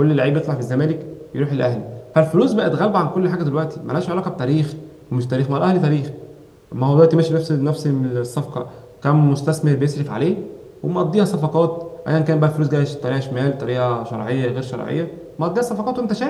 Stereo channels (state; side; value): identical; both; correlation 1.00